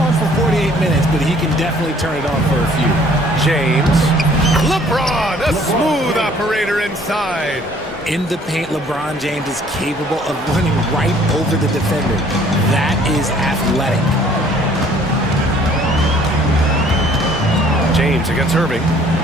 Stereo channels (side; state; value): both; normal; correlation 0.57